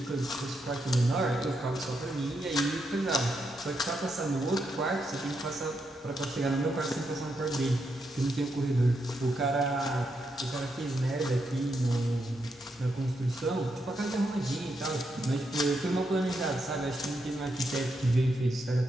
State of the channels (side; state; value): both; normal; correlation 0.82